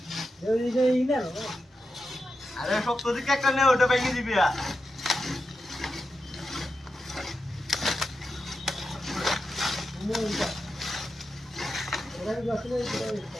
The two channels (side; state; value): both; normal; correlation 0.89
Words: আরে শক্ত দিকে একটা নে ওটা ভেঙে দিবি